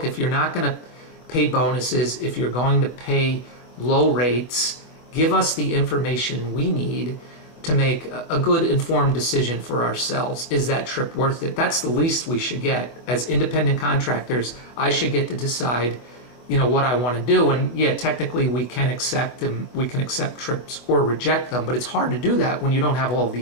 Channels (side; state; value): right; late; 24 ms